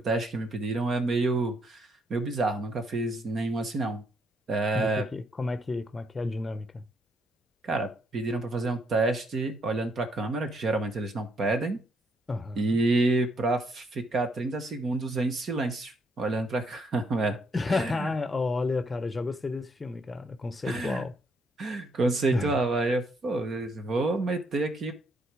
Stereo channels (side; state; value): both; normal; correlation 0.72